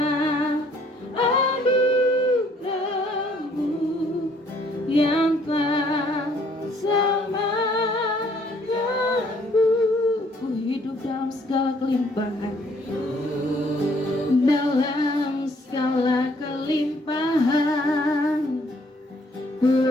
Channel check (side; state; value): both; normal; correlation 0.63